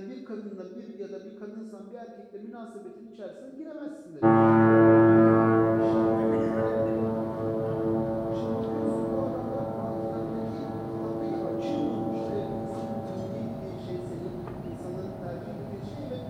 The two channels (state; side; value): identical; both; correlation 1.00